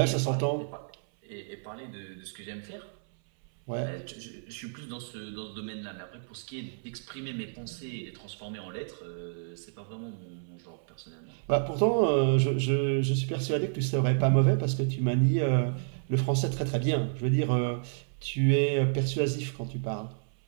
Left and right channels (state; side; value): silent; left; 58 dB below the other